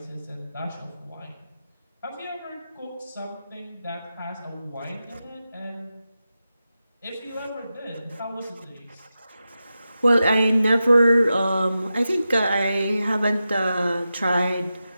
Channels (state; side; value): inverted; both; correlation -0.91